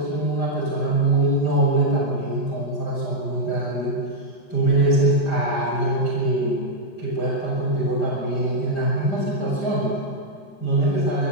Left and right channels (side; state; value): right; late; 5.0 ms